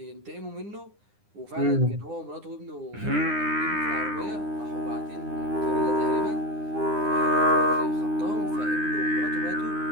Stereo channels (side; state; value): left; late; 9.8 ms